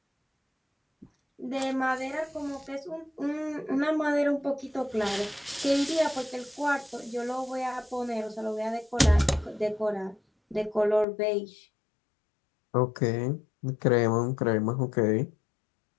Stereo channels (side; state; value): right; drops out; at 11.1 s